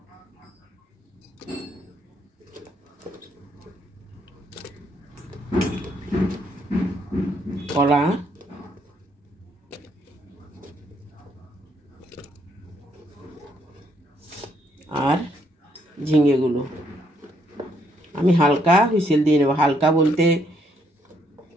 কলা, আর ঝিঙেগুলো আমি হালকা হুইসেল দিয়ে নেব। হালকা বলতে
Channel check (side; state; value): both; normal; correlation 0.72